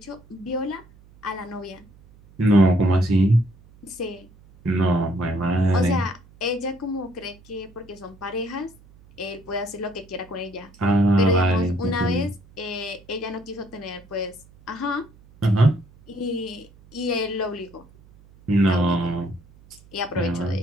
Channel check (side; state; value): right; noise; hum, 25 dB below the sound